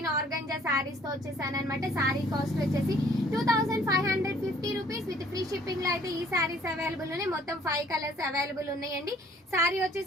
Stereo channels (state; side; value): normal; both; correlation 0.58